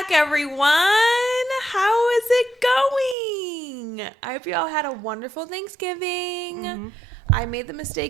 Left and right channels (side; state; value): left; drops out; at 3.2 s